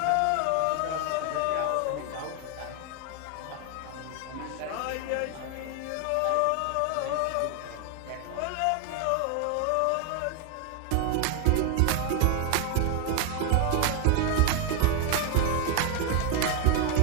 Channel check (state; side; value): different; both; correlation 0.00